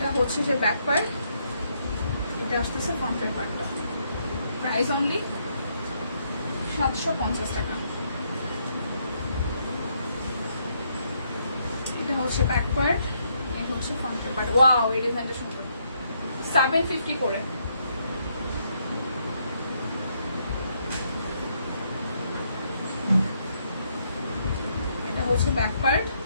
হচ্ছে যে ব্যাক পার্ট, এটা আসতেছে ফ্রন্টের পার্টটা। প্রাইস অনলি 750 টাকা। এটা হচ্ছে ব্যাক পার্ট, এটা হচ্ছে ফ্রন্টের পার্ট। ওয়াও, এই ডিজাইনটা সুন্দর। 750 করে। এটা হচ্ছে ব্যাক পার্ট,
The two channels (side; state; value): both; inverted; correlation -0.74